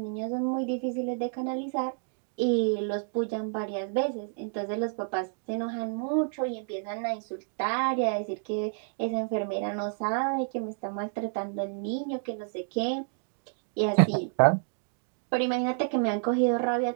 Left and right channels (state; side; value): silent; left; 58 dB below the other